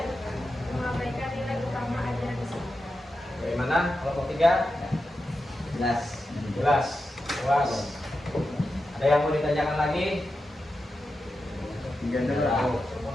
mengabaikan nilai utama ajaran Islam. Bagaimana kelompok 3? Jelas. Jelas. Puas. Ada yang mau ditanyakan lagi?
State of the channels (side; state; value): both; normal; correlation 0.90